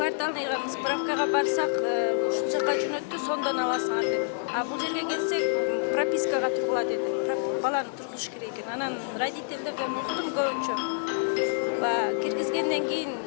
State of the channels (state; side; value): silent; right; digital silence